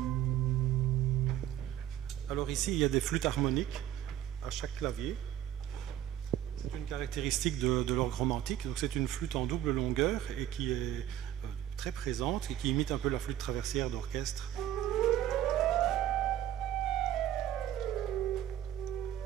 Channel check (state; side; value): quieter; left; 11.9 dB